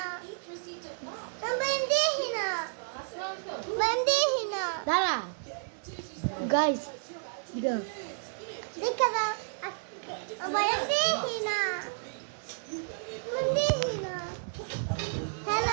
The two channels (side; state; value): left; silent; digital silence